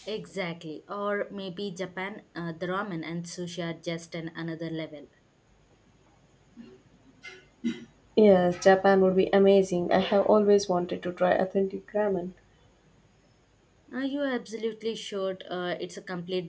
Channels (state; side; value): identical; both; correlation 1.00